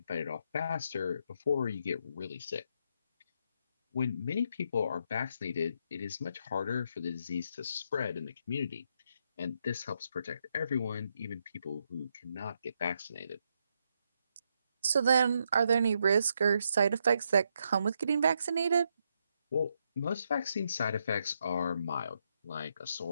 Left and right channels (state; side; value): inverted; both; correlation -0.78